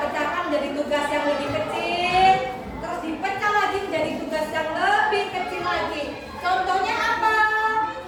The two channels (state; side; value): identical; both; correlation 1.00